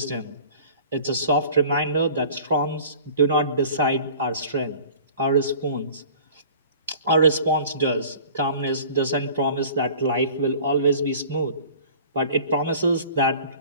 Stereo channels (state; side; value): inverted; both; correlation -0.45